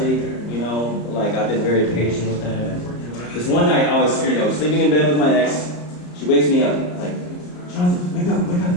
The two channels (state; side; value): late; right; 34 ms